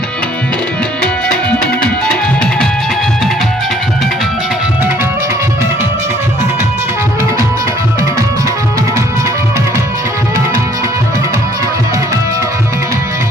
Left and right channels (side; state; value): both; normal; correlation 0.60